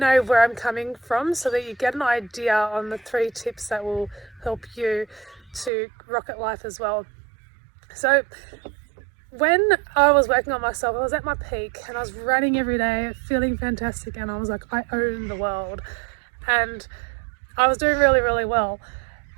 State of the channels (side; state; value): left; drops out; at 5.7 s